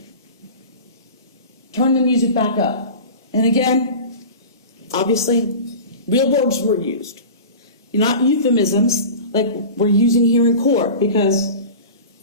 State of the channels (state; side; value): inverted; both; correlation -0.34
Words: turn the music back up. And again, obviously, real words were used. Not euphemisms like we're using here in court because